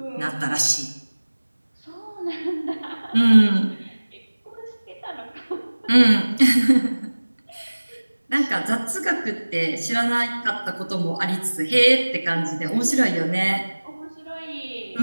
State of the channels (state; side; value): inverted; both; correlation -1.00